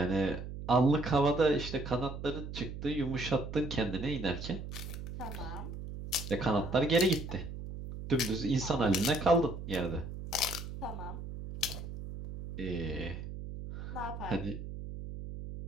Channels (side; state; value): right; noise; hum, 8 dB below the sound